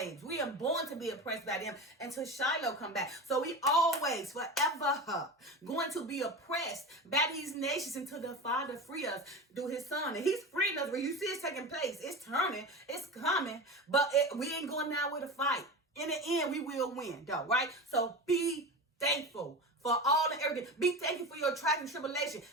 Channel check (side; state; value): both; normal; correlation 0.27